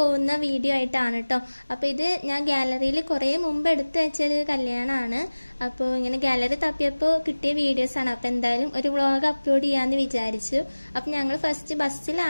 വീഡിയോ ആയിട്ടാണ് കേട്ടോ. അപ്പൊ ഇത് ഞാൻ ഗാലറിയിൽ കുറെ മുമ്പ് എടുത്തു വെച്ചൊരു കല്യാണമാണ്. അപ്പോൾ ഇങ്ങനെ ഗാലറി തപ്പിയപ്പോൾ കിട്ടിയ വീഡിയോസ് ആണ്. അപ്പൊ എന്തായാലും ഒരു വ്ളോഗ് അപ്ലോഡ് ചെയ്യാന്ന് വിചാരിച്ചു. അപ്പൊ ഞങ്ങൾ ഫസ്റ്റ്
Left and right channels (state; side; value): inverted; both; correlation -1.00